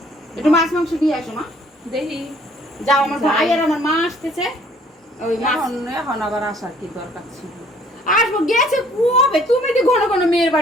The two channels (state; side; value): normal; both; correlation 0.58